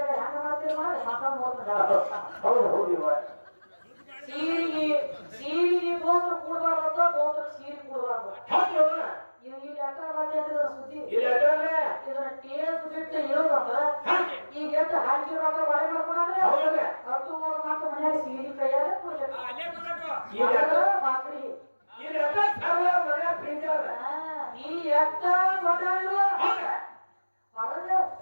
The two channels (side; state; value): both; inverted; correlation -1.00